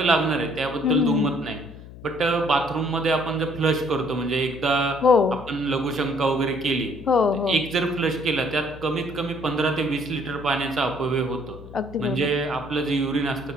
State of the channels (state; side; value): noise; left; hum, 16 dB below the sound